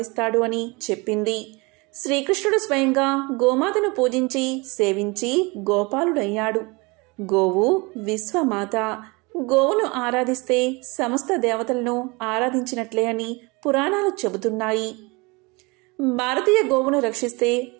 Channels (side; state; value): left; quieter; 26.6 dB